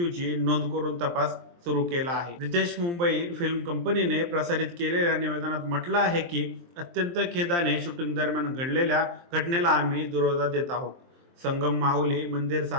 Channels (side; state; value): left; late; 23 ms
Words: नोंद करून तपास सुरू केला आहे. रितेश मुंबई फिल्म कंपनीने प्रसारित केलेल्या निवेदनात म्हटलं आहे की अत्यंत खेदाने शूटिंग दरम्यान घडलेल्या घटनेला आम्ही दुजोरा देत आहोत. संगम माहुली मंदिर